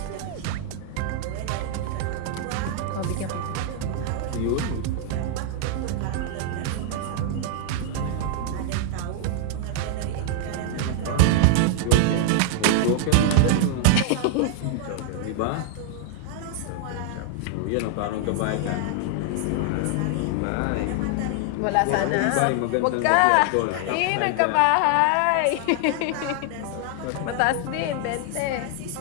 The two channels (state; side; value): different; both; correlation 0.00